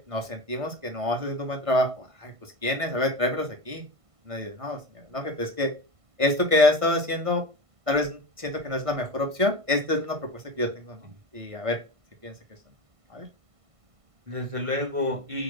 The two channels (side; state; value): left; late; 1.5 ms